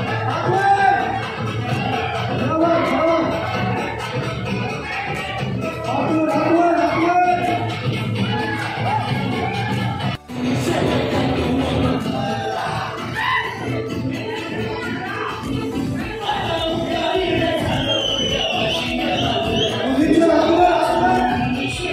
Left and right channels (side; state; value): both; identical; correlation 1.00